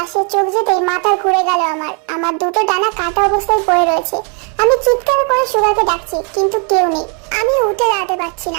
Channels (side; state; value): left; quieter; 38.3 dB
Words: চোখ যেতেই মাথা ঘুরে গেল। আমার দুটো ডানা কাটা অবস্থায় পড়ে রয়েছে। আমি চিৎকার করে সুগাকে ডাকছি, কিন্তু কেউ নেই। আমি উঠে দাঁড়াতে পারছি